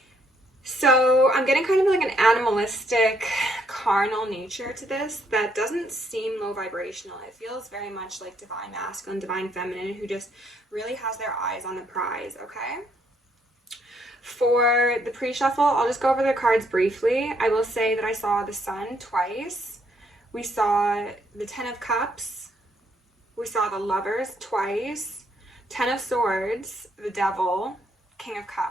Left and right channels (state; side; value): normal; both; correlation 0.71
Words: So I'm getting kind of like an animalistic, carnal nature to this that doesn't seem low vibrational. It feels very much like divine masculine, divine feminine, who just really has their eyes on the prize, okay? For the pre-shuffle, I'll just go over the cards briefly. I will say that I saw the Sun twice. We saw the Ten of Cups. We saw the Lovers twice. Ten of Swords, the Devil, King of